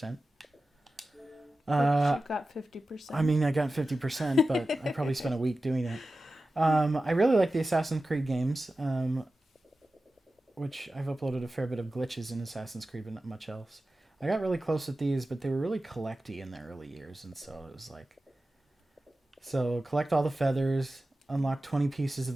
But you got 50%. I mean, I got 50%, but I probably spent a week doing it. I really like the Assassin's Creed games, which I've uploaded a fair bit of glitches in Assassin's Creed, but not much else. I got really close with these, but they were really collecty in the early years, and so it was like... So, collect all the feathers, unlock 20 pieces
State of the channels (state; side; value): normal; both; correlation 0.94